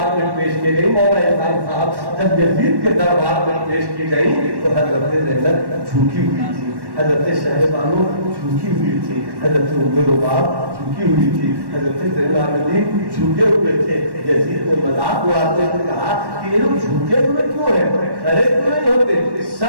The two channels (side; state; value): left; late; 1.1 ms